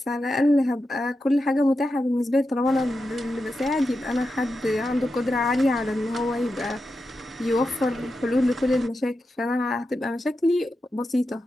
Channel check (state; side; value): normal; both; correlation 0.89